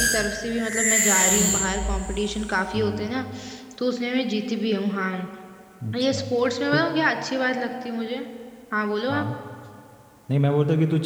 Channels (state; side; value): identical; both; correlation 1.00